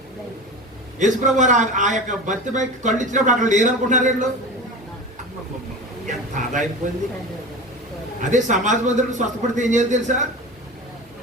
యేసు ప్రభు ఆ యొక్క భర్తపై కళ్ళు ఇచ్చినప్పుడు అక్కడ లేరనుకుంటున్నారు వీళ్ళు. ఎంత ఆదాయిపోయింది. అదే సమాజ మందిరం స్వస్థపడితే ఏం చేయాలి తెలుసా?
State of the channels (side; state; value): both; normal; correlation 0.31